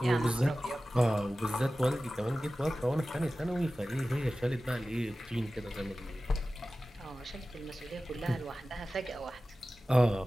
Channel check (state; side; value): normal; both; correlation 0.96